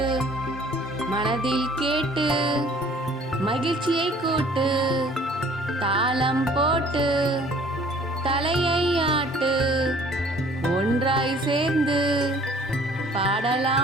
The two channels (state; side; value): normal; both; correlation 0.54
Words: மனதில் கேட்டு, மகிழ்ச்சியை கூட்டு, தாளம் போட்டு, தலையை ஆட்டு, ஒன்றாய் சேர்ந்து,